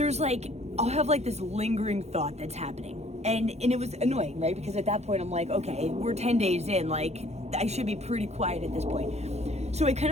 like, I'll have like this lingering thought that's happening. And it was annoying, right? Because at that point I'm like, okay, we're 10 days in, like I should be pretty quiet at this point. So I kind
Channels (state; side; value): late; left; 0.31 ms